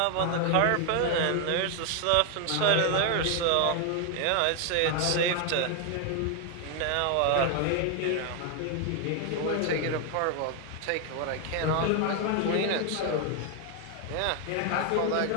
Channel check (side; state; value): both; different; correlation 0.01